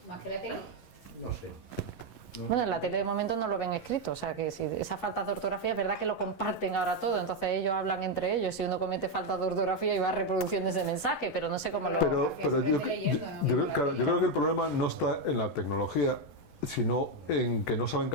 Más que la tele. No sé. Bueno, en la tele de momento no lo ven escrito, o sea que si esa falta de ortografía es verdad que lo comparten ahora todo, entonces ellos hablan entre ellos, si uno comete falta de ortografía y va reproduciendo ese mensaje, pero no sé cómo lo... Pero se mete leyendo, ¿no? claro, yo creo que el problema no está en la tecnología, sino en que no saben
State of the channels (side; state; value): right; late; 11 ms